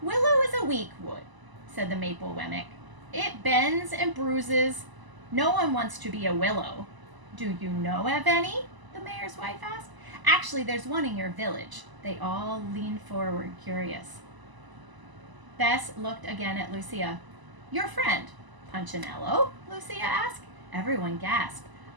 Willow is a weak wood, said the maple Wemmick. It bends and bruises. No one wants to be a willow. Do you know of any? The mayor's wife asked. Actually, there's one in your village. They all leaned forward, curious. Bess looked again at Lucia. Your friend, Punchinello? Lucia asked. Everyone gasped.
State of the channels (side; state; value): left; late; 1.0 ms